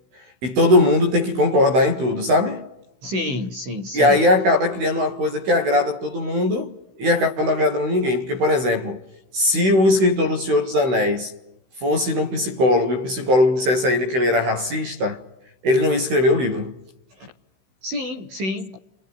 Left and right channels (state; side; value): late; left; 16 ms